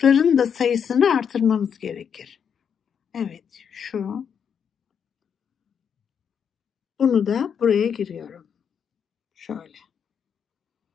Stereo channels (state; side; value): quieter; right; 7.4 dB